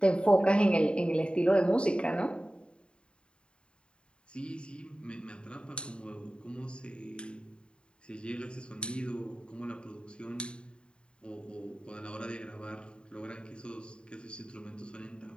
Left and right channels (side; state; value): right; late; 0.052 ms